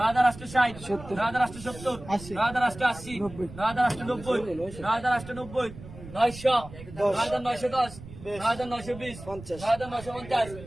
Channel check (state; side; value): noise; right; rumble, 15 dB below the sound